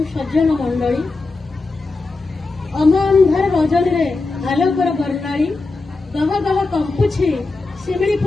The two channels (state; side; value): quieter; right; 3.6 dB